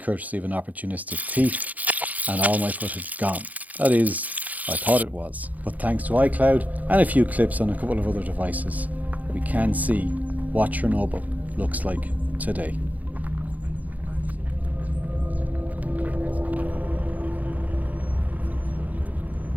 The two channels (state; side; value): late; left; 0.078 ms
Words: courtesy of an opportunistic thief, and all my footage gone. That is, I thought it was. But thanks to iCloud and a few clips on a couple of other devices, we can see what Chernobyl looks like today.